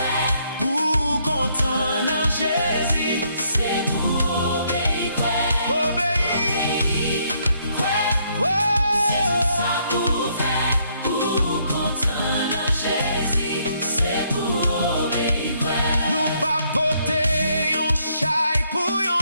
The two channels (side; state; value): both; inverted; correlation -0.70